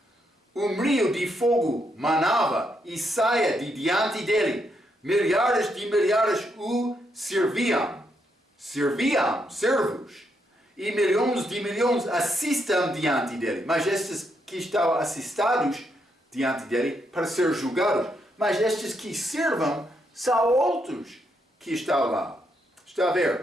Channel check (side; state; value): both; normal; correlation 0.78